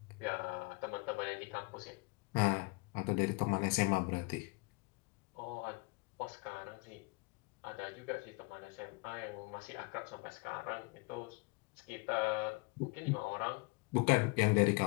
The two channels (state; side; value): quieter; right; 28.8 dB